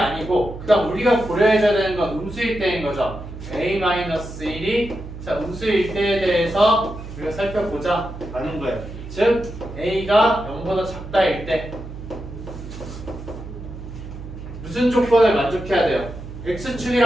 그다음 우리가 고려해줘야 되는 건 음수일 때인 거죠. a-1이 자 음수일 때에 대해서 우리가 살펴보자 라는 거예요. 즉 a가 0보다 작다일 때 무슨 조건을 만족해야 돼요?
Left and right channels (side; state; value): right; noise; hum, 11 dB below the sound